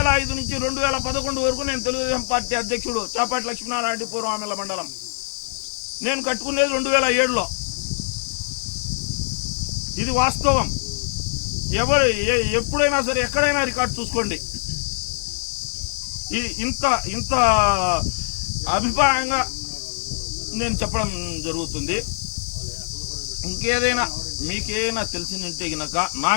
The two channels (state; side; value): silent; right; 63 dB below the other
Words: వరకు నేను తెలుగుదేశం పార్టీ అధ్యక్షుడు చాపాటి లక్ష్మీనారాయణ రెడ్డి పూర్వామిల మండలం. నేను కట్టుకునేది 2007లో. ఇది వాస్తవం. ఎప్పుడైనా సరే ఎక్కడైనా రికార్డు చూసుకోండి. ఇంత అభిప్రాయంగా నేను చెప్పడం జరుగుతుంది. ఇంకేదైనా మీకేమైనా తెలిసిందంటే గనక నా